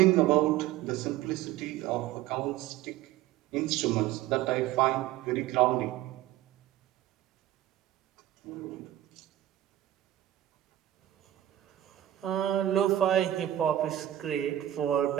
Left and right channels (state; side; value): quieter; left; 13.3 dB